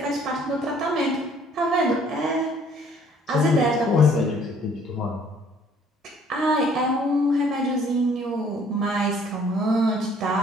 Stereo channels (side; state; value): both; normal; correlation 0.59